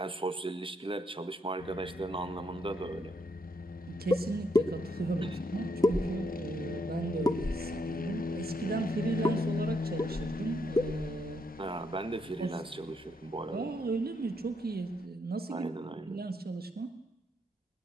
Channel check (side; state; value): both; normal; correlation 0.76